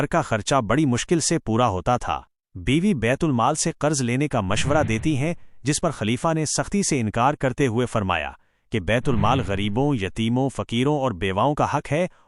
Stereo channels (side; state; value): both; identical; correlation 1.00